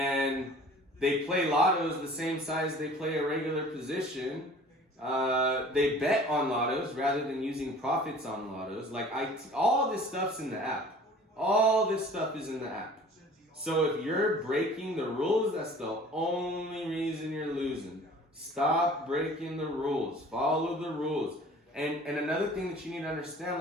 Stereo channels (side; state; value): both; normal; correlation 0.47